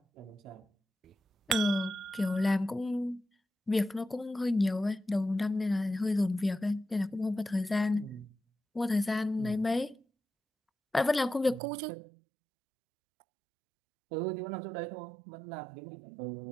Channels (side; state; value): left; drops out; at 11.6 s